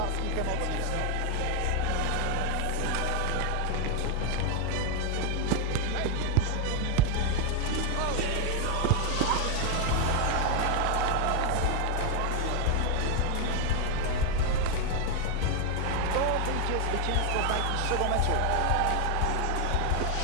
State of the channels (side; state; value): both; different; correlation 0.01